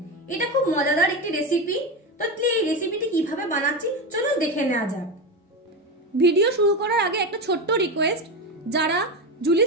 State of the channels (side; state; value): both; normal; correlation 0.17